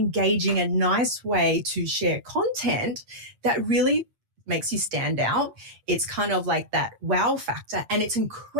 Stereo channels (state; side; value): late; left; 8.6 ms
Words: and nice way to share content that really makes you stand out. It's kind of like that wow factor, and it's